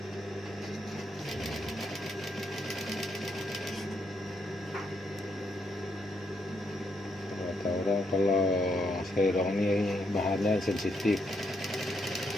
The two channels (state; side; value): normal; both; correlation 0.77